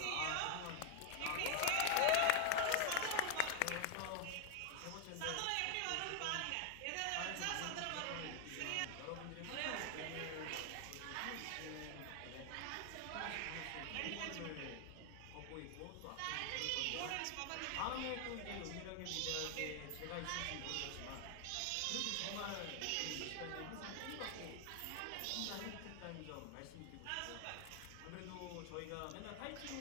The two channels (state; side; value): different; both; correlation 0.01